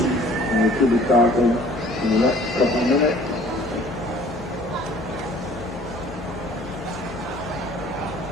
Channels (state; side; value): normal; both; correlation 0.52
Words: Should be starting in the next couple of minutes.